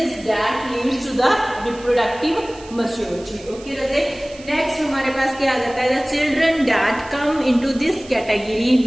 that leads to the reproductive maturity. Okay, Raje next हमारे पास क्या आ जाता है, the children that come into this category,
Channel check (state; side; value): noise; right; hiss, 20 dB below the sound